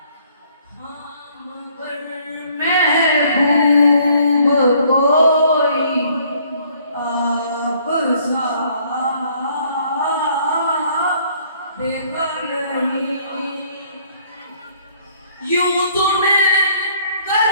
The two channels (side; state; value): both; inverted; correlation -0.62